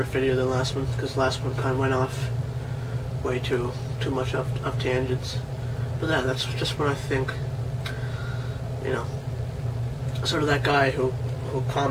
video than the last one, because the last one kind of went off way too much off tangents. But yeah, that's just what I think. You know, sort of that guy who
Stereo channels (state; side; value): identical; both; correlation 1.00